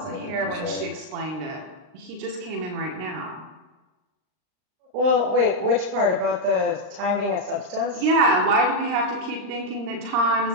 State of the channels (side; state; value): left; late; 39 ms